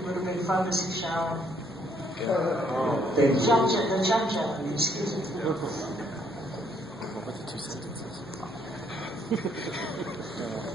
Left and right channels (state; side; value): normal; both; correlation 0.68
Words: would have been fun to see Sharon. The Jum-Jum, excuse me.